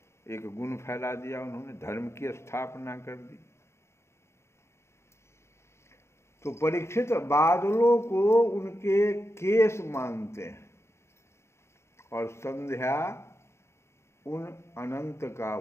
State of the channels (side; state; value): right; late; 0.13 ms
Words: एक गुण फैला दिया उन्होंने, धर्म की स्थापना कर दी। तो परीक्षित बादलों को उनके केस मानते हैं और संध्या उन अनंत का